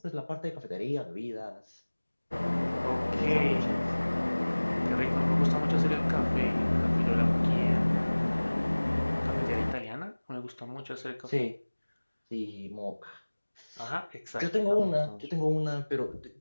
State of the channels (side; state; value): both; inverted; correlation -1.00